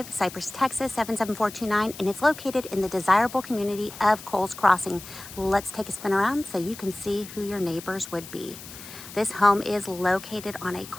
Cypress, Texas, 77429, and it's located in the desirable community of Coles Crossing. Let's take a spin around so you can see who your neighbors would be. This home is located on a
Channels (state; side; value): noise; left; hiss, 15 dB below the sound